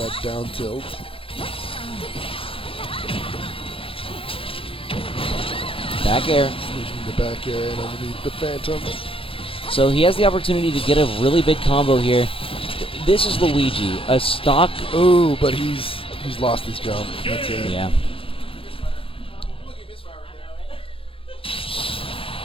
down tilt. Back air. Sneaking the back air and underneath the Phantom. So he has the opportunity to get a really big combo here. This is Luigi, a stock. Ooh, but he's lost his jump. That's it. Yeah.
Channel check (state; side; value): late; right; 0.26 ms